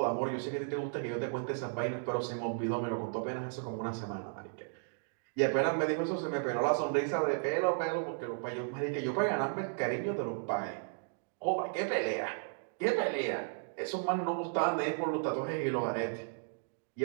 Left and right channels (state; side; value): silent; left; digital silence